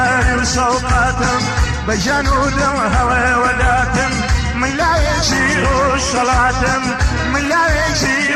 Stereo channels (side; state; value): both; identical; correlation 1.00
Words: وسوقاتم بجانو دم هوى وداتم من لا يجيروا صلاتم من لا